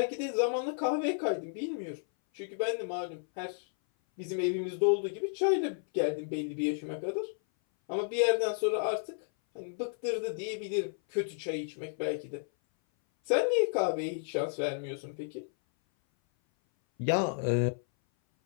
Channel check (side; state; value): right; silent; 56 dB below the other